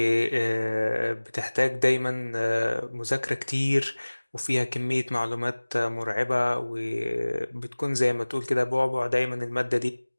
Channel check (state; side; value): inverted; both; correlation -1.00